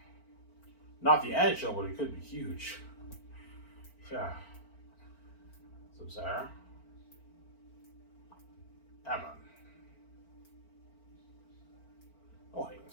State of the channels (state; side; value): late; right; 4.4 ms